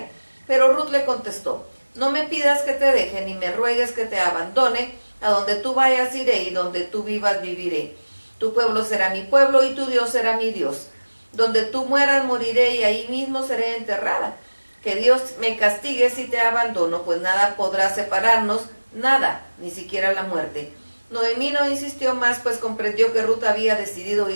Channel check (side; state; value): both; inverted; correlation -1.00